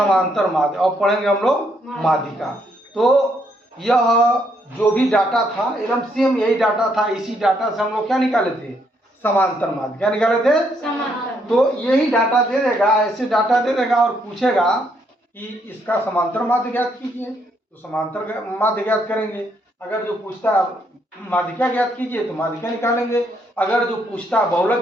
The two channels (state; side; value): normal; both; correlation 0.73